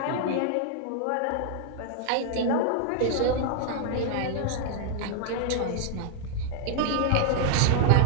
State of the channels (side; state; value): both; different; correlation -0.01